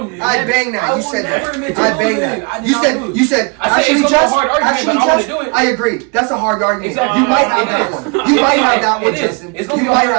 I bang that. You said that. I bang that. You said. You said. I said Actually, it's gonna be a just. hard argument, Actually, but I wanna just. do it. I agree. That's a hard argument. Exactly. You might have It that is. one. You might have that one, It is. Justin. It's gonna You be a might hard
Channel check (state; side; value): quieter; left; 33.2 dB